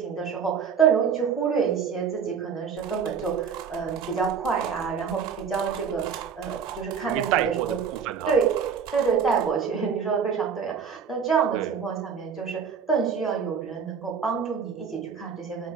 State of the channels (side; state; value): left; quieter; 6.6 dB